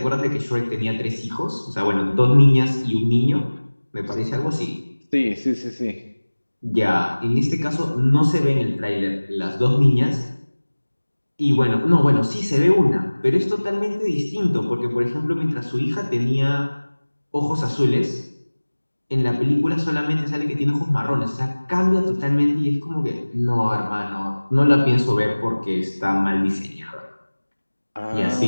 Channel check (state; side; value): inverted; both; correlation -1.00